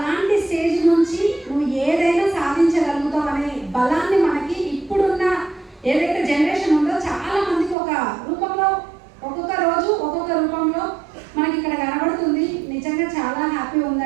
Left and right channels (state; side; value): drops out; left; at 7.8 s